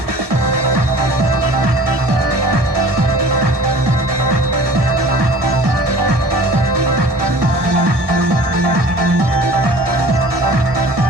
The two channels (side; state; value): left; late; 1.2 ms